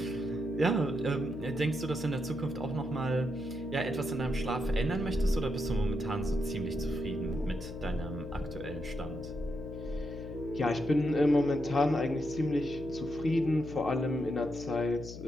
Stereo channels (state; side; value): noise; left; hum, 11 dB below the sound